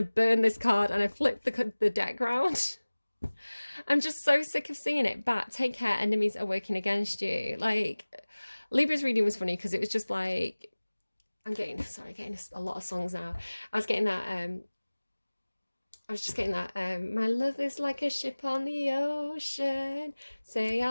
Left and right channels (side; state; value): both; inverted; correlation -1.00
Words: to burn this card, and I flipped the deck round. I'm just so sick of seeing it. But take care, enemies are working against you. Like, Libra's reading was funny because it was just like, I'm getting a lot of songs now. I was just getting that, my love is like a ship on the ocean. Say I